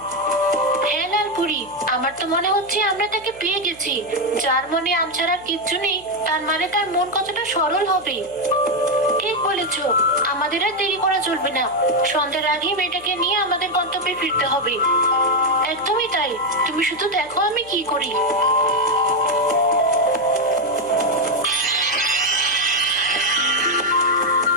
হ্যাঁ লালপুরি, আমার তো মনে হচ্ছে আমরা তাকে পেয়ে গেছি। যার মনে আম ছাড়া কিচ্ছু নেই, তার মানে তার মন কতটা সরল হবে। ঠিক বলেছো, আমাদের আর দেরি করা চলবে না। সন্ধ্যার আগেই মেয়েটাকে নিয়ে আমাদের গন্তব্যে ফিরতে হবে। একদমই তাই, তুমি শুধু দেখো আমি কি করি।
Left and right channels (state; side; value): noise; right; hum, 26 dB below the sound